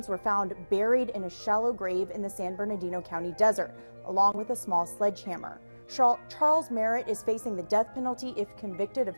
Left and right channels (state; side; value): inverted; both; correlation -1.00